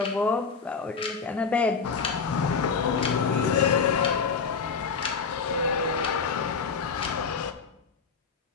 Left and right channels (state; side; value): quieter; right; 5.5 dB